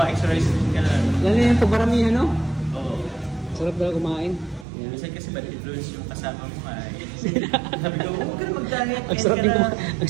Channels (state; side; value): drops out; left; at 4.7 s